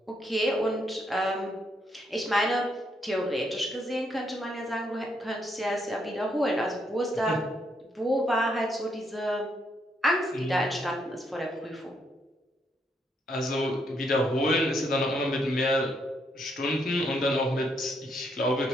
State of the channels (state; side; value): normal; both; correlation 0.75